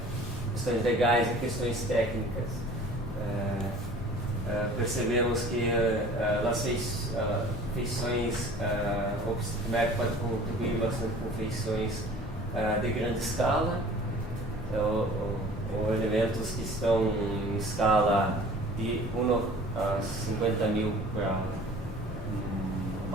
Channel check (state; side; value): normal; both; correlation 0.46